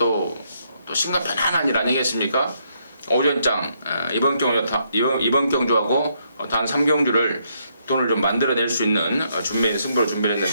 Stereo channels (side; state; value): both; inverted; correlation -0.74